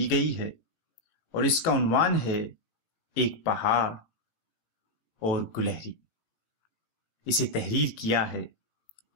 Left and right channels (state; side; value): late; right; 18 ms